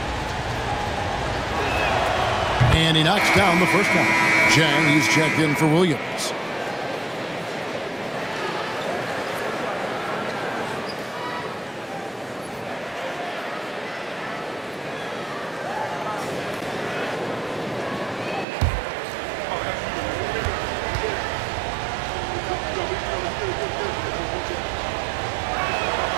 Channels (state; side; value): drops out; left; at 18.4 s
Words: And he knocks down the first one. Jang, he's checked in for Williams.